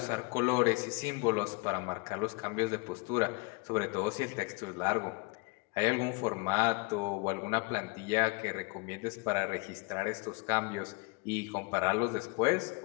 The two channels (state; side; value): quieter; right; 28.2 dB